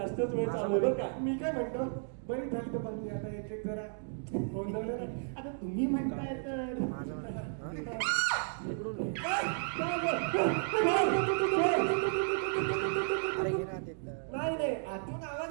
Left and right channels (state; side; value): silent; left; digital silence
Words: वेळ चालू आहे बरं का. मी काय म्हणतो, बरी झाली तर पण आता एक एक जरा गोंधळलं ना. आता तुम्ही म्हणताय तर नाही नाही, आतून